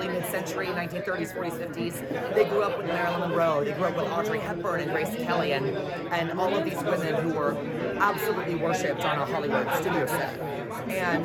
mid-century, 1930s, 40s, 50s. They grew up with Marilyn Monroe. They grew up with Audrey Hepburn and Grace Kelly and all of these women who were absolutely worshipped on a Hollywood studio set.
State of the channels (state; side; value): identical; both; correlation 1.00